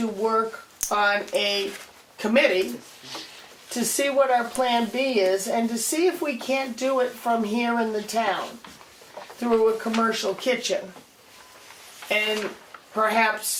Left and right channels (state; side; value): identical; both; correlation 1.00